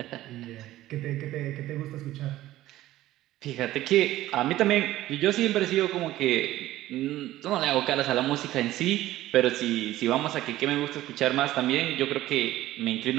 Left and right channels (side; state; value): left; quieter; 15.1 dB